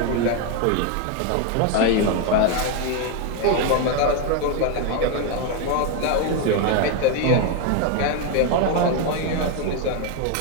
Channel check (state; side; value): different; both; correlation 0.01